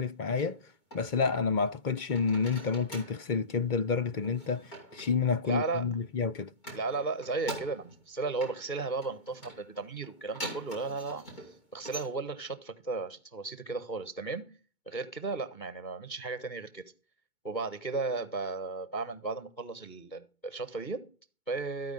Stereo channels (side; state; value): right; late; 2.2 ms